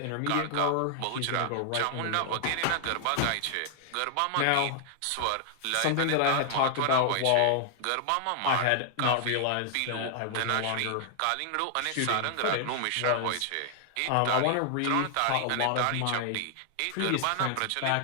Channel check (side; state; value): both; different; correlation 0.00